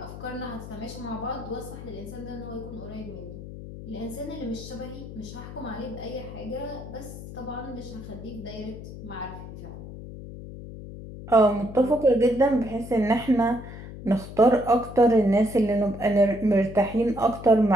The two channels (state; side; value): noise; left; hum, 12 dB below the sound